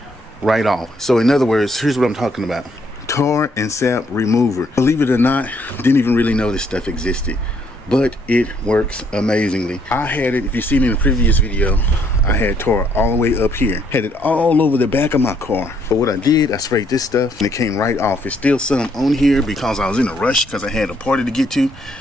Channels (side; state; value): both; normal; correlation 0.69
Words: right off. So in other words, here's what I'm talking about: tar and sap remover. Believe it or not, didn't even really know this stuff existed, but it works amazingly. I had it, if you've seen in the previous video, I had tar all the way up here, had it all over the back of my car. But what I did, I sprayed this stuff and it came right off. It's still some on here because I was in a rush because I had a party to get to,